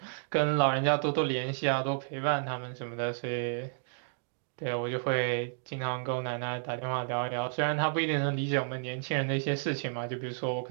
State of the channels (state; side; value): silent; left; digital silence